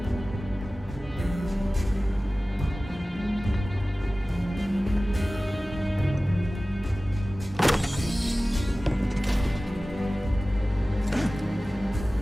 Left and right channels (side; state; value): both; normal; correlation 0.97